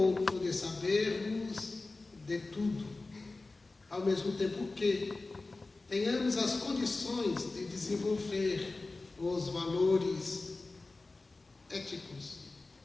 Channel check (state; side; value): quieter; right; 3.4 dB